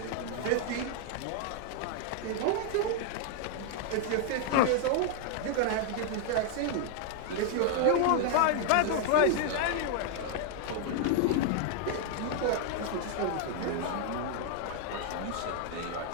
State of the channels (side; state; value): both; different; correlation 0.00